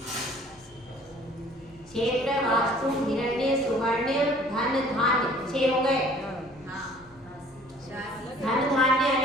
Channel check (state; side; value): noise; left; hum, 29 dB below the sound